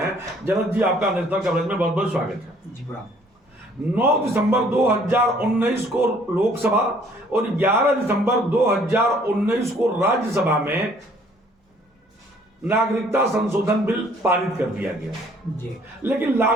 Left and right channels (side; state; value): both; normal; correlation 0.59